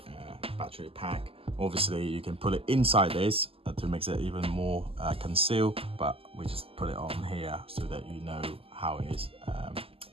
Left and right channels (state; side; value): late; left; 0.27 ms